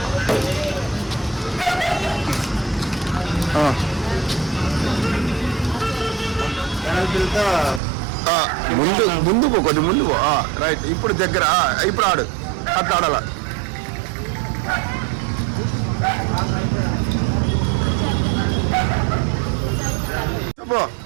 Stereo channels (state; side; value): drops out; left; at 7.8 s